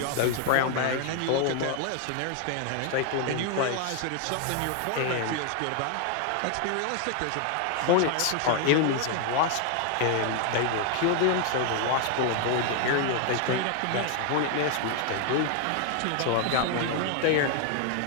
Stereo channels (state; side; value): different; both; correlation 0.00